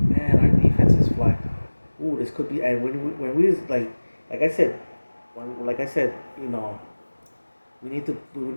our defense is flying. Ooh, this could be. And when we like I said, like I said, we need to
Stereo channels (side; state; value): both; inverted; correlation -1.00